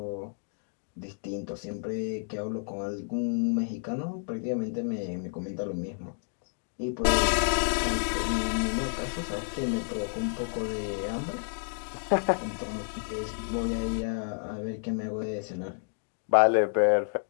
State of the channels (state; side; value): silent; right; digital silence